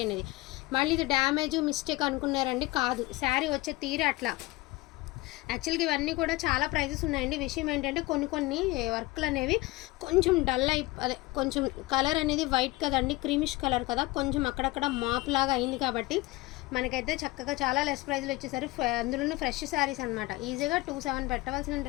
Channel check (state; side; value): quieter; right; 21.1 dB